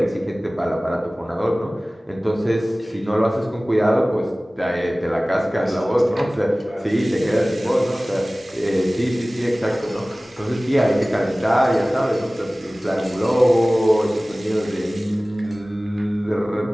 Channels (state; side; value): normal; both; correlation 0.98